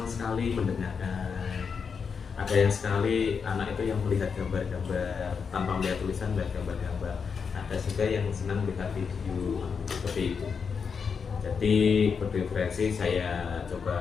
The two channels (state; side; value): quieter; right; 6.0 dB